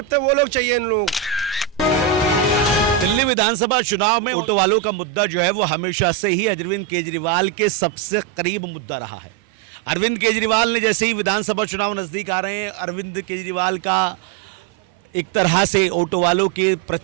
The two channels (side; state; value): left; quieter; 8.6 dB